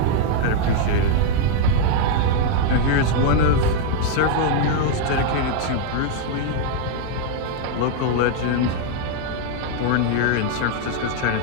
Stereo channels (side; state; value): both; different; correlation 0.00